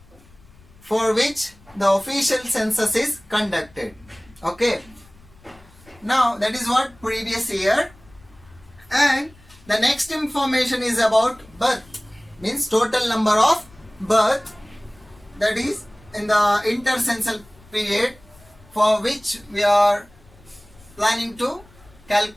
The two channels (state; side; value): noise; left; rumble, 26 dB below the sound